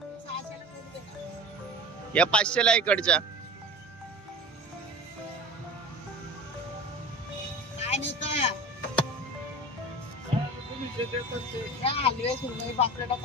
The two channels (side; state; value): both; normal; correlation 0.33